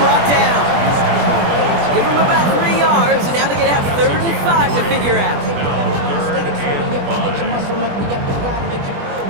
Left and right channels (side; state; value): left; late; 21 ms